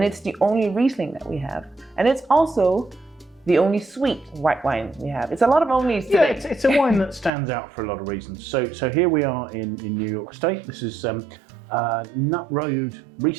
it's the only Riesling that we have, and it's also the only sweet white wine we have. It's a lot of onlys today. Yeah, it's a wine that stands out for a lot of reasons. So here we are in New York State. This is Nutt Road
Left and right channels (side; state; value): left; drops out; at 7.3 s